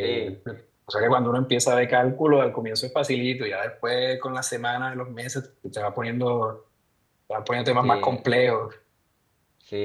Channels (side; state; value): both; identical; correlation 1.00